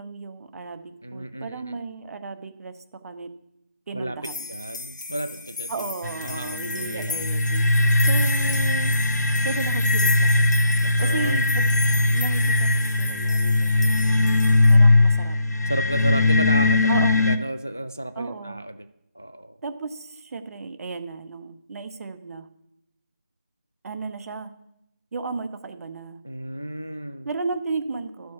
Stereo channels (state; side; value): inverted; both; correlation -0.74